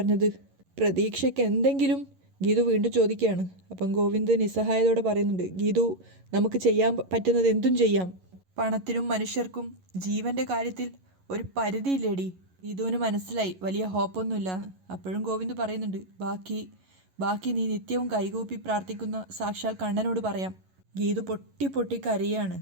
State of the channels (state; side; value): late; left; 11 ms